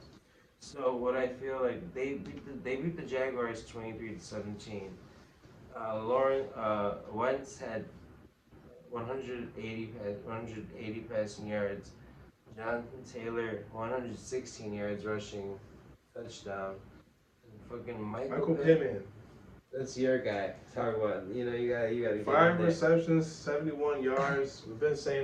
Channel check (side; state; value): both; identical; correlation 1.00